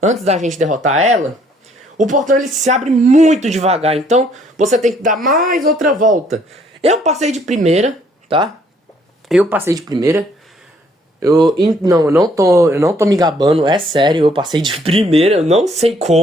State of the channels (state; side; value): normal; both; correlation 0.64